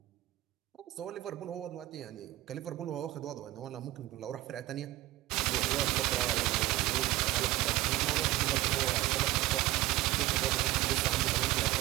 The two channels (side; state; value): left; quieter; 17.0 dB